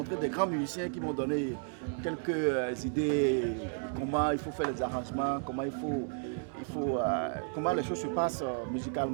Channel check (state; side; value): silent; left; 55 dB below the other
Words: des grands musiciens qui m'ont donné quelques idées de comment il faut faire les arrangements, comment les choses se passent